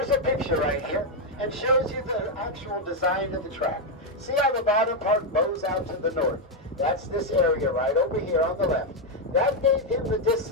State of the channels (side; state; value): both; normal; correlation 0.02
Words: a picture right here, and shows you the actual design of the track. See how the bottom part bows out to the north? That's this area right over here on the left. That gave him the